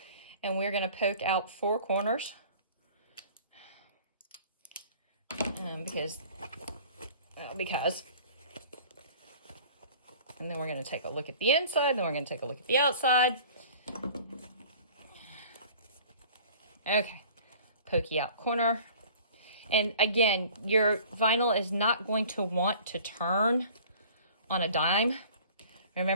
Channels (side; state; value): both; inverted; correlation -0.47